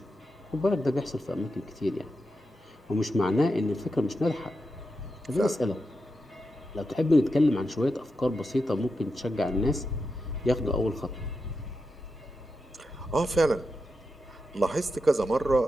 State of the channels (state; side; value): normal; both; correlation 0.88